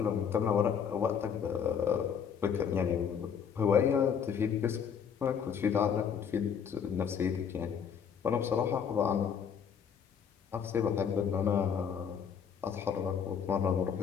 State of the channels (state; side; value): quieter; right; 7.4 dB